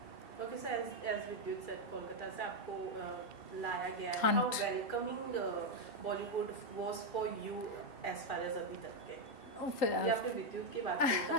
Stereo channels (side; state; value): right; late; 2.7 ms